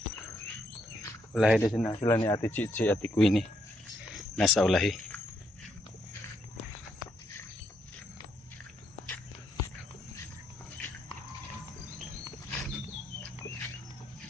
Ulahi din sila ni Ate Chichi at Ate Queenie. Nasa ulahi.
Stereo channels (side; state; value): both; normal; correlation 0.75